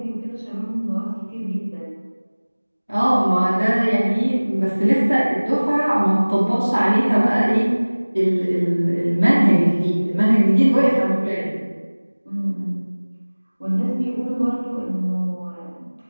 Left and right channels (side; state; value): both; inverted; correlation -1.00